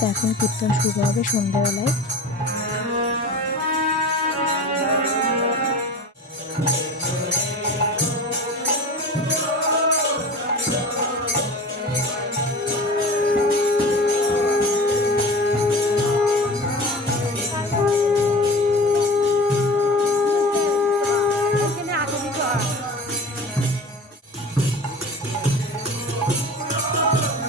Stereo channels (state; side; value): normal; both; correlation 0.36